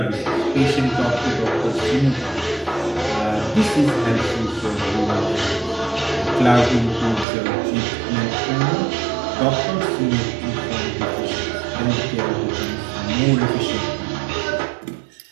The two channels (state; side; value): drops out; left; at 7.2 s